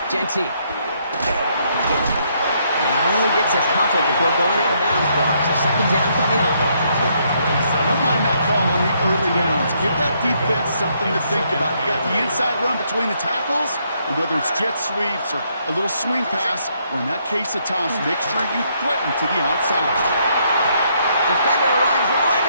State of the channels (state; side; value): inverted; both; correlation -0.72